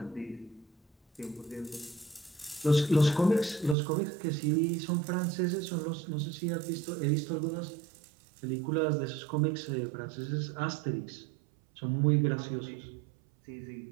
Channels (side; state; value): left; drops out; at 3.8 s